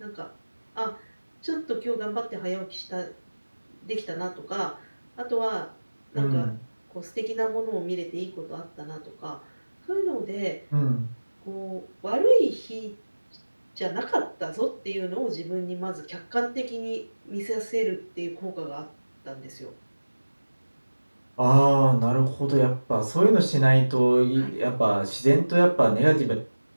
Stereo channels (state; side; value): inverted; both; correlation -1.00